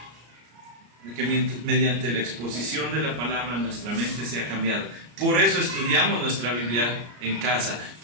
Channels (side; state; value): left; late; 33 ms